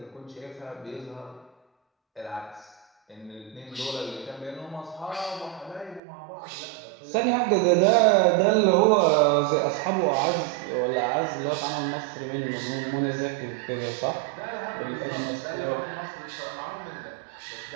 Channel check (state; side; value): drops out; left; at 6.0 s